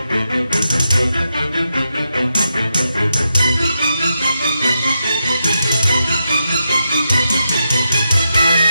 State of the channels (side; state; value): both; inverted; correlation -0.85